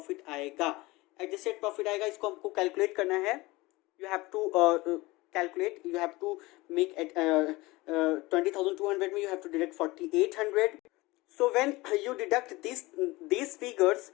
आएगा। एडजस्टेड प्रॉफिट आएगा, इसको हमको कैलकुलेट करना है। You have to calculate, you have to make 20,200 में you have to deduct 4800. So when you deduct these figures,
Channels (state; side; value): quieter; right; 21.4 dB